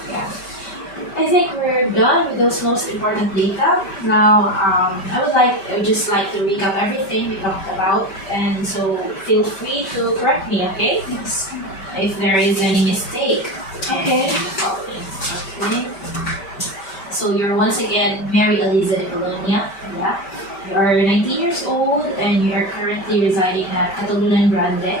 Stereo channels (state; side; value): late; right; 5.1 ms